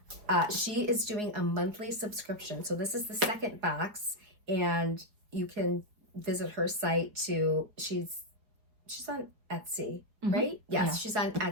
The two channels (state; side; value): late; left; 4.8 ms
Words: she is doing a monthly subscription. So this is the second box, and you can visit her site too. She's on Etsy, right? Yes, yeah. She's on